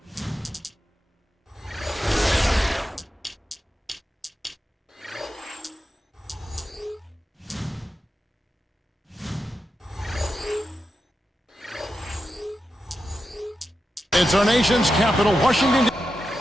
It's our nation's capital, Washington,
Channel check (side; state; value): both; normal; correlation 0.89